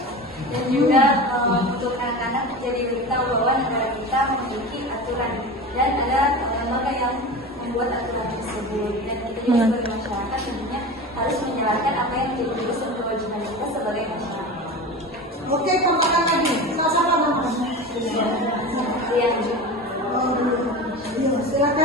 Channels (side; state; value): both; normal; correlation 0.30